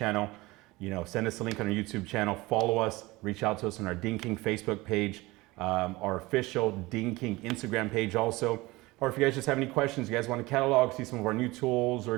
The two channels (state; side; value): quieter; left; 21.2 dB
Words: You know, send us a link on our YouTube channel, follow us, reach out to us on our Ding King Facebook page, our official Ding King Instagram page also. Or if you guys just have any questions, you guys want to catalog, see some of our new tools or